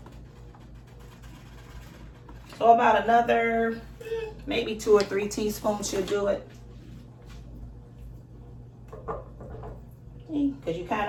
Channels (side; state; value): both; identical; correlation 1.00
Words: So about another, maybe 2 or 3 teaspoons should do it. Because you kind